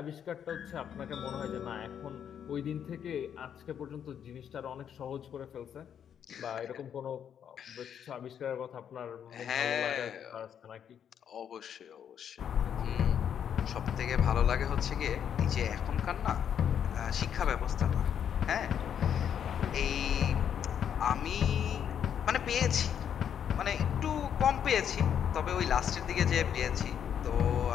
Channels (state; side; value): quieter; right; 8.7 dB